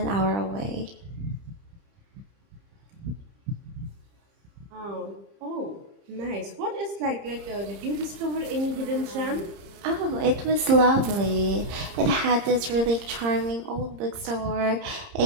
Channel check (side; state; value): left; late; 30 ms